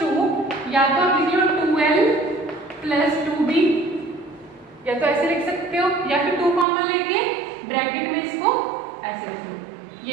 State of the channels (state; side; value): drops out; left; at 6.7 s